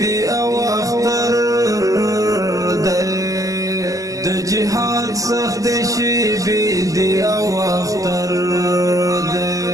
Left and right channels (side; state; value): left; late; 0.17 ms